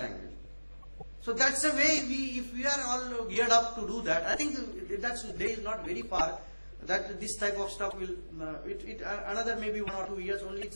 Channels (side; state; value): both; inverted; correlation -1.00